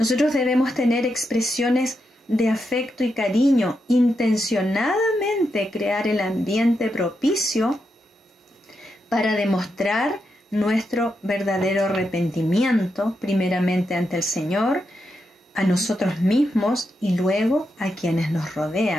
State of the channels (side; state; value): both; normal; correlation 0.84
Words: debemos tener expresiones de afecto y cariño, intencionadamente crear el ambiente propicio para demostrar nuestro verdadero arrepentimiento, primeramente ante el Señor, a nosotros mismos y luego a quienes nos